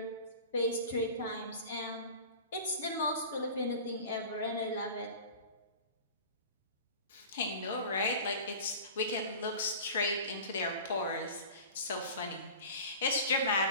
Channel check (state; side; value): inverted; both; correlation -0.38